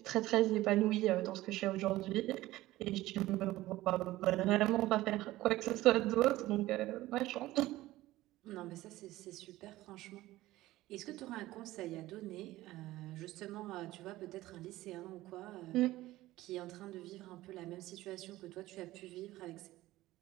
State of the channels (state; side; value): quieter; left; 16.8 dB